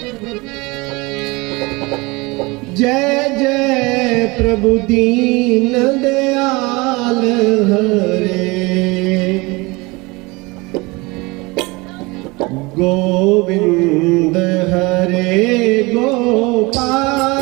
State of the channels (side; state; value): left; quieter; 24.6 dB